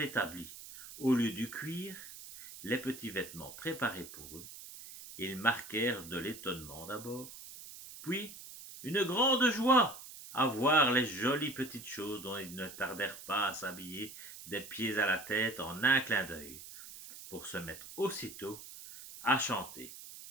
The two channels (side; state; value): right; noise; hiss, 14 dB below the sound